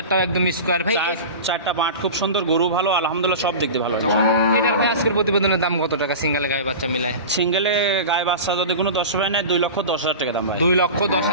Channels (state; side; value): inverted; both; correlation -0.31